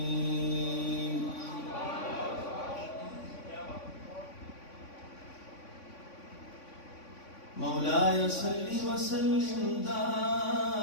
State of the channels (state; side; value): late; right; 3.5 ms